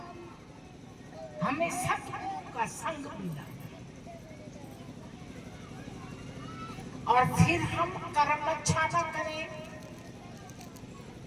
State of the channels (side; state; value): both; identical; correlation 1.00